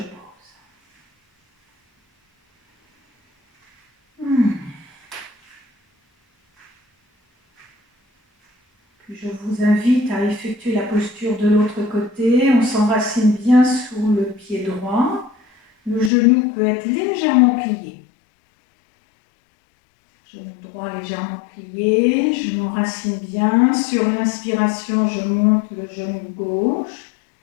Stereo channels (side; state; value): right; drops out; at 16.1 s